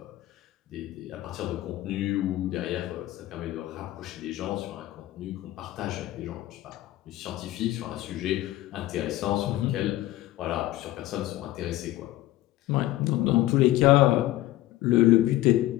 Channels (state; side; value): quieter; right; 15.9 dB